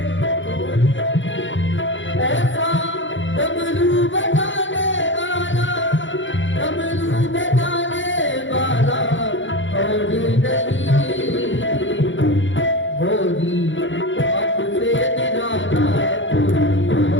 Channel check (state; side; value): late; right; 0.55 ms